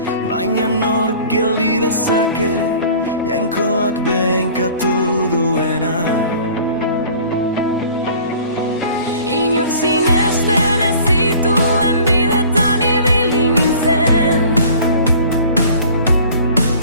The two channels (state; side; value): inverted; both; correlation -0.47